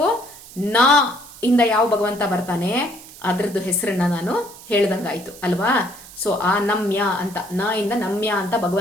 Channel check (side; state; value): right; noise; hiss, 18 dB below the sound